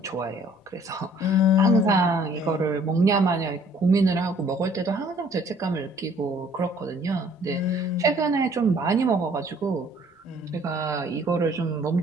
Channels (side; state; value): both; normal; correlation 0.58